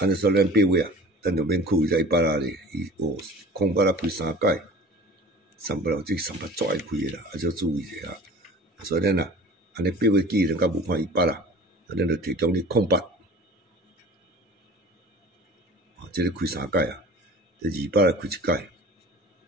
尼说咱8月啊，咱就免扣伊只100啦咧，伊哦，空白啦开3届，38啦，即38足爱开诶啦，啊，要注意者啊，所以咱啊，安尼8月既然甲无看100啦，咱就提供你空白，哦，即个开3届啊。第28来开1届，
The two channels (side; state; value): both; normal; correlation 0.42